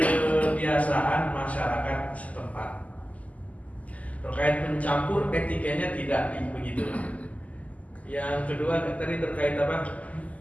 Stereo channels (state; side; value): late; right; 0.072 ms